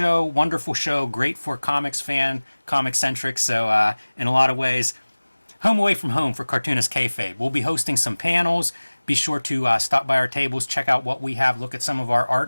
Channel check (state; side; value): inverted; both; correlation -1.00